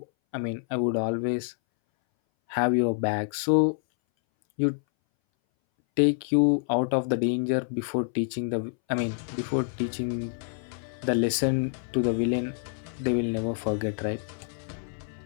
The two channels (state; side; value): silent; right; 60 dB below the other